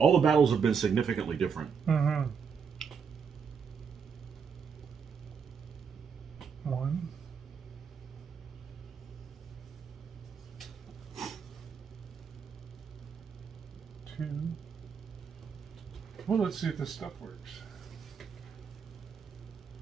the battles have been significantly different. Mm-hmm. 1. 2. Well, let's see if this stuff works.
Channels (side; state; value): left; quieter; 6.4 dB